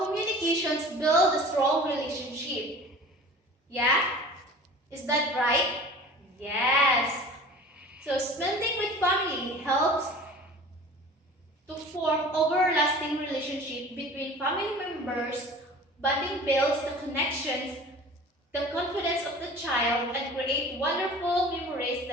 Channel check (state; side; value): normal; both; correlation 0.42